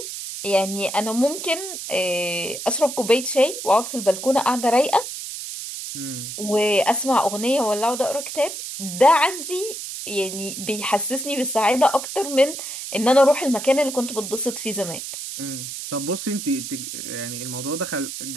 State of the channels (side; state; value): right; noise; hiss, 8 dB below the sound